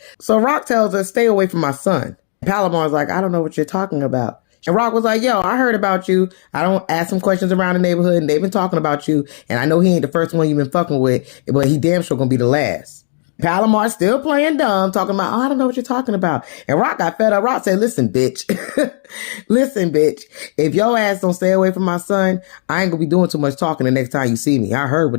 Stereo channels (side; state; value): right; silent; digital silence